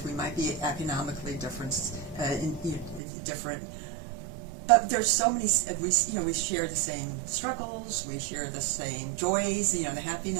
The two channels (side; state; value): left; drops out; at 3.0 s